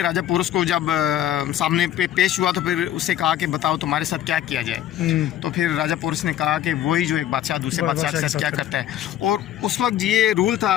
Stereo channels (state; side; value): quieter; right; 11.8 dB